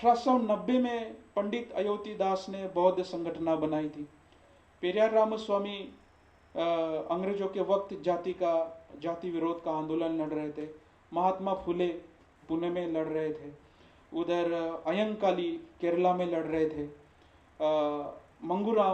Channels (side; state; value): both; identical; correlation 1.00